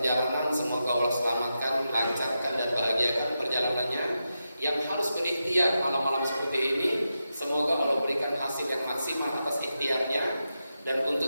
semoga Allah selamatkan, lancarkan dan bahagiakan perjalanannya. Yang harus berikhtiar malam-malam seperti ini, semoga Allah berikan hasil yang maksimal atas ikhtiarnya. Dan untuk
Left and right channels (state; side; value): inverted; both; correlation -0.89